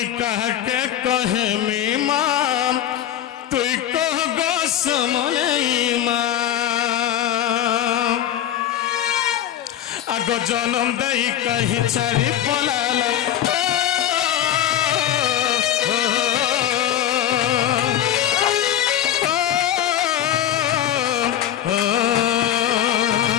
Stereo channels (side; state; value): right; quieter; 11.2 dB